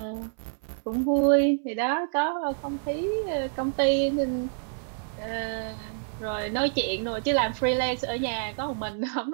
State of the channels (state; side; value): silent; left; 60 dB below the other